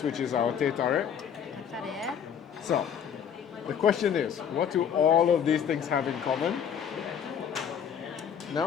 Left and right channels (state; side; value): quieter; right; 8.1 dB